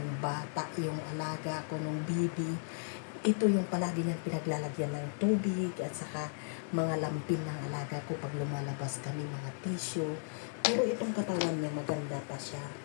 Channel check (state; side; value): silent; right; 54 dB below the other